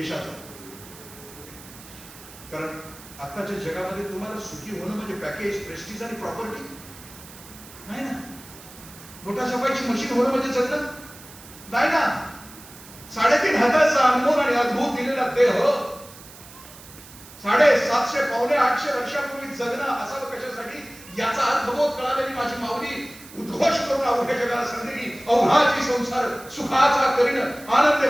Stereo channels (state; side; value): noise; right; hiss, 19 dB below the sound